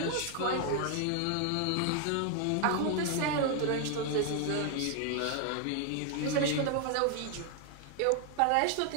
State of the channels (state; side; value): different; both; correlation 0.00